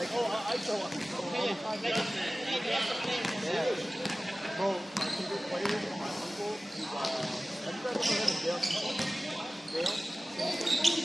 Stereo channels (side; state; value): both; normal; correlation 0.97